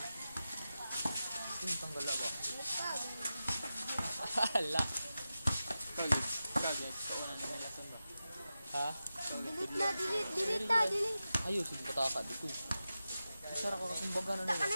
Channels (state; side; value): inverted; both; correlation -0.93